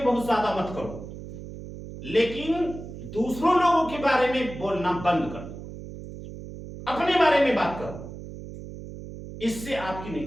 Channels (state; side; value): noise; right; hum, 12 dB below the sound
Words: بہت زیادہ مت کرو، لیکن دوسروں لوگوں کے بارے میں بولنا بند کر دو، اپنے بارے میں بات کرو، اس سے آپ کی